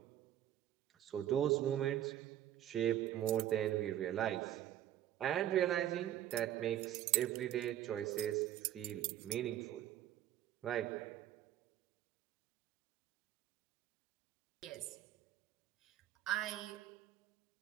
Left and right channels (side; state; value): left; quieter; 12.1 dB